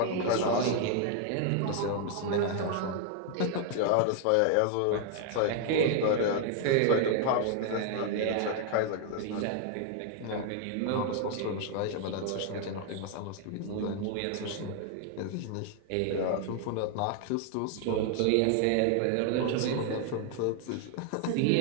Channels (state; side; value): different; both; correlation 0.00